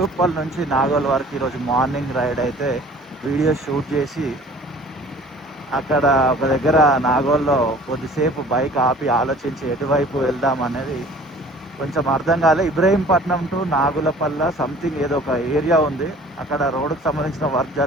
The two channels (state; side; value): normal; both; correlation 0.49